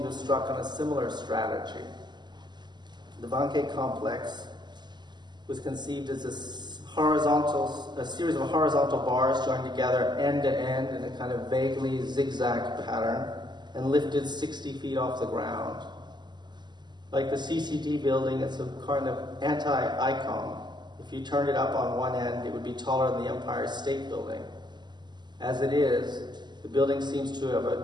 to have struck on a similar strategy. The Vanke complex was conceived as a series of horizontal bars joined together end to end in a kind of vaguely zigzag pattern and lifted 60 feet off the ground. Like the CCTV building, it's a kind of anti-icon. If you turned it up on one end, it would be taller than the Empire State Building. As it is, the building seems to have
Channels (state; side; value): late; left; 0.21 ms